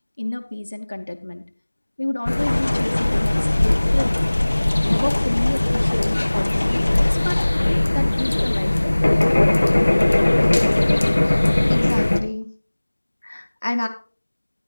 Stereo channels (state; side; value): inverted; both; correlation -1.00